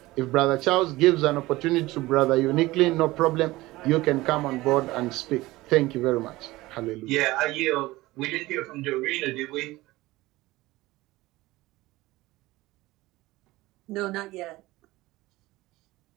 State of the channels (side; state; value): left; quieter; 19.0 dB